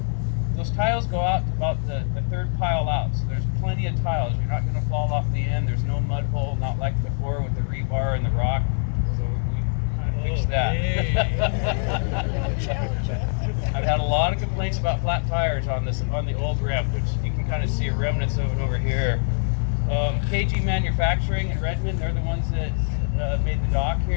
those tiles go out to about the third pile out. So there's plenty of tiles. You're not going to fall off the end. There's no mud hole, not like before with the rebar and the rock. So we kind of fixed that. I've had a lot of complaints about flat tires on the old ramp, which you can kind of see remnants of it over here. KG Manufacturing in Redmond, they're the ones that made the dock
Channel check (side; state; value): right; silent; digital silence